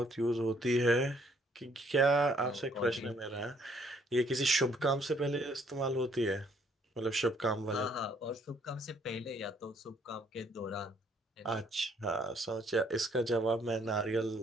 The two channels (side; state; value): both; normal; correlation 0.65